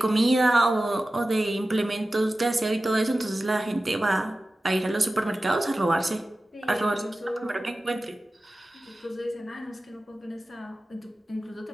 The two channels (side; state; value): both; normal; correlation 0.95